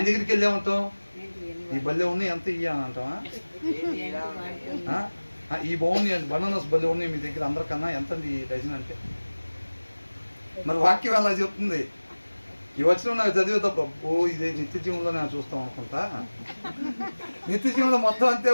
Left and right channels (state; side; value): inverted; both; correlation -1.00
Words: దగ్గరికి వెళ్ళేమంటాం, ఈ బల్లె ఉన్నాయి ఎంత ఇయ్య అని అంటామా? ఈ బాగున్నాయి బనానాస్ బల్లె ఉన్నాయి మీ దగ్గర అందరికన్నా ఎంత ఈ డజన్ అంటే. మరి వాక్యం అలా చెప్తుంది. ఈ వచ్చిన నాకు చదివే తప్ప ఇదే నిత్య జీవంలో నేను చూస్తాం అనుకుంటా. నిత్య జీవంలో మొత్తం అంతే